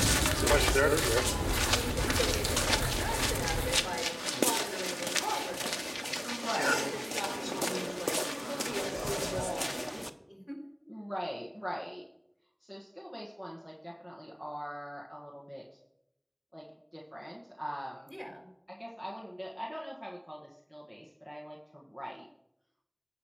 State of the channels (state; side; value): identical; both; correlation 1.00